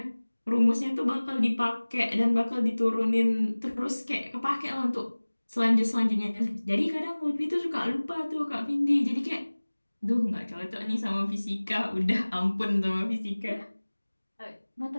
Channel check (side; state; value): both; inverted; correlation -1.00